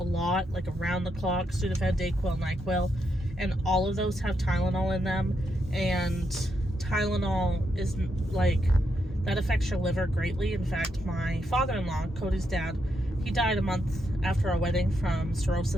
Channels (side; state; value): both; normal; correlation 0.81